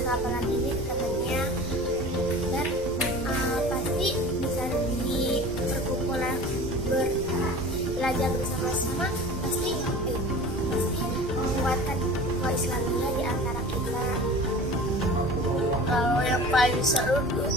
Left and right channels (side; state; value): both; normal; correlation 0.38